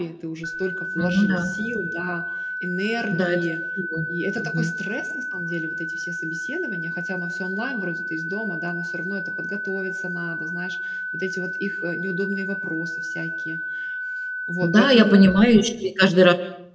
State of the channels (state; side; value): identical; both; correlation 1.00